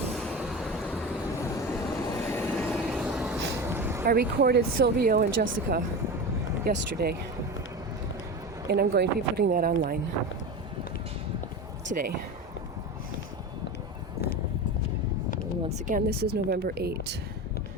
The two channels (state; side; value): normal; both; correlation 0.26